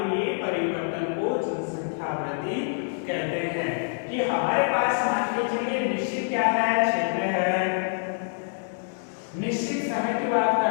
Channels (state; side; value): silent; right; 61 dB below the other